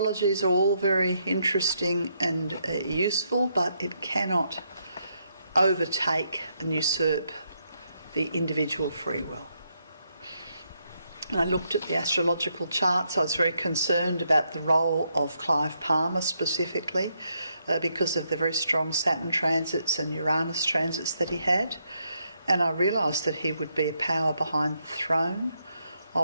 are all very interesting and useful, but it cannot overtake and usurp the individual free will. And I looked at the astrological charts. I was very concerned about the role of Clive Palmer specifically because of the very strong Saturn transits and Uranus transits that he had. And I realised that he would be a power behind the throne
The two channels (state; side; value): inverted; both; correlation -0.78